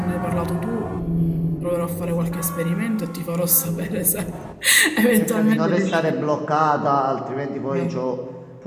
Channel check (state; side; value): identical; both; correlation 1.00